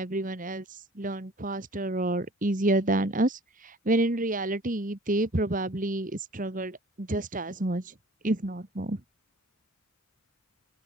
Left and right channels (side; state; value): both; normal; correlation 0.49